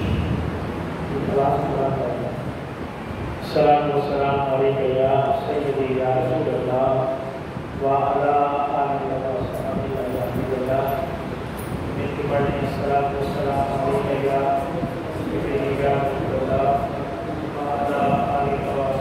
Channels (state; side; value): identical; both; correlation 1.00